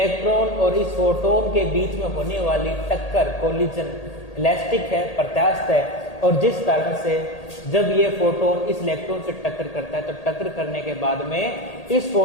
और इस फोटोन के बीच में होने वाली टक्कर कोलिजन इलास्टिक है, प्रत्यास्थ है, और जिस कारण से जब ये फोटोन इस इलेक्ट्रॉन से टक्कर करता है तो टक्कर करने के बाद में इस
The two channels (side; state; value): right; late; 1.8 ms